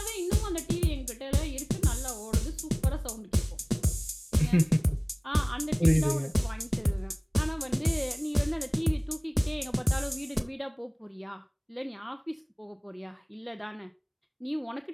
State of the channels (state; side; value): identical; both; correlation 1.00